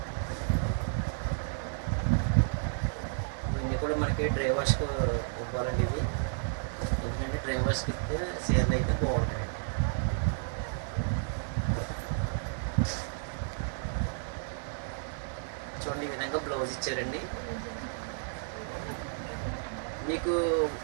ఇవన్నీ కూడా మనకి డ్రైవర్స్కి ఇవ్వాలండి ఇవి, ఎందుకంటే డ్రైవర్స్కి ఇస్తే చీరలు అయితే బాగుంటాయండి. చూడండి ఈ విధంగా బ్లౌజ్ ఇచ్చారండి. మీకు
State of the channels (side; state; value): left; silent; digital silence